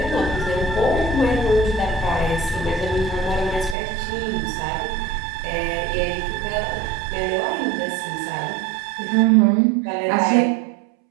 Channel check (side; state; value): left; drops out; at 3.8 s